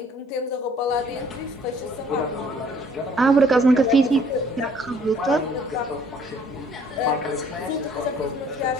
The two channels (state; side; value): normal; both; correlation 0.59